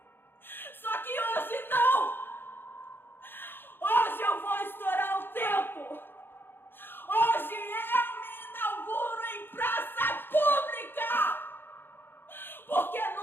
Só que hoje não! Hoje eu vou estourar o tempo! Hoje eu me inauguro em praça pública! Porque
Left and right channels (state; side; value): late; right; 0.10 ms